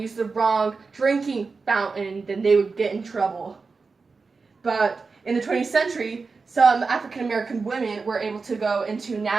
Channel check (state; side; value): quieter; left; 4.4 dB